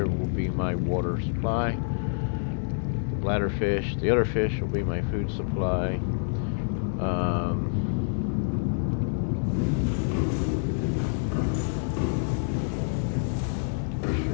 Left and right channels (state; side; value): silent; right; digital silence